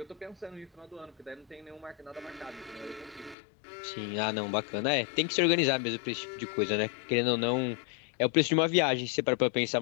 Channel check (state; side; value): drops out; right; at 3.4 s